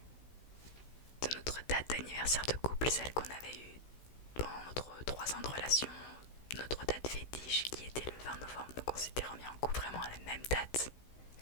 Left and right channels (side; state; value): right; late; 16 ms